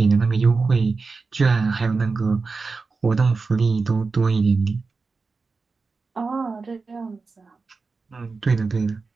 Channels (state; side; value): quieter; left; 4.3 dB